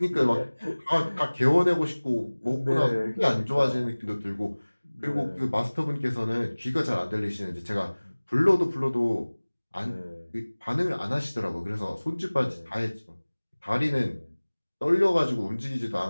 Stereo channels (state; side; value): inverted; both; correlation -1.00